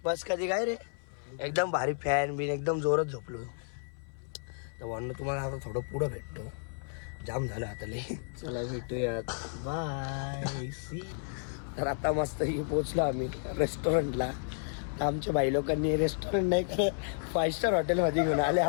बस कधी काय रे एकदम भारी फॅन बिन एकदम जोरात झोपलो. तर म्हणून तुम्हाला आता थोडं पुढं भेटतो. जाम झालं आता लई. चला भेटूया बाय. तर आता मस्त पोचलो आम्ही रेस्टॉरंटला. तर आमच्या बाई लोकांनी रेस्टॉरंट नाही कर 5 स्टार हॉटेलमध्ये घेऊन आले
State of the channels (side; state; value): right; silent; 56 dB below the other